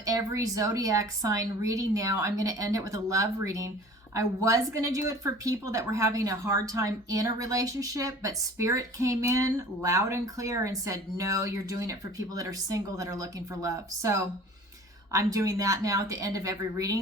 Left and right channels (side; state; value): both; normal; correlation 0.45